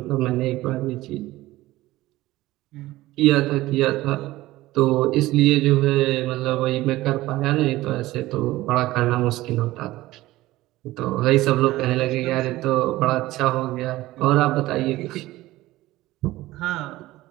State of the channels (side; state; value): left; quieter; 17.3 dB